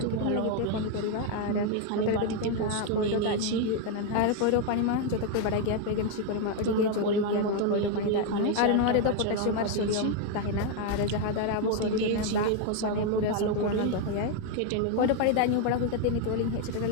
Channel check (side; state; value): both; different; correlation 0.01